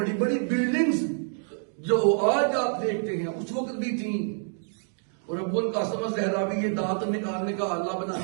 بڑی بلڈنگز جو آج آپ دیکھتے ہیں اس وقت بھی تھیں. اور ابو القاسم الزہراوی یہ دانت نکالنے کا آلہ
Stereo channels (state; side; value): silent; left; digital silence